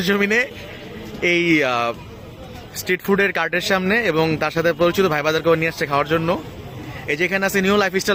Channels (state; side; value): identical; both; correlation 1.00